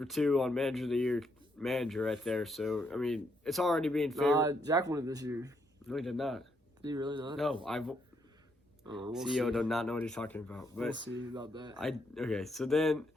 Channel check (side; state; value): both; normal; correlation 0.76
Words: 2 on Manager of the Year manager right there. So, I mean, it's already being favored. Jack won it this year. No, he did not. Did he really not? No, we'll CEO see. does not know what he's talking about. But We'll see about that. Okay, so then